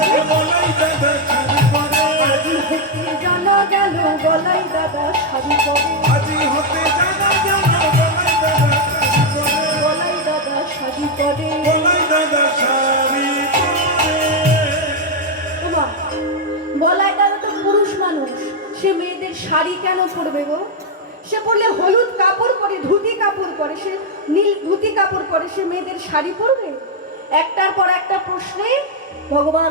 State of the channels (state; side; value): normal; both; correlation 0.01